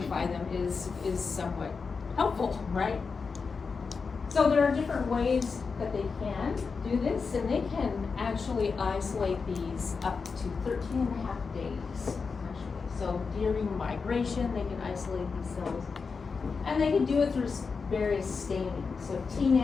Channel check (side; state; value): right; quieter; 5.0 dB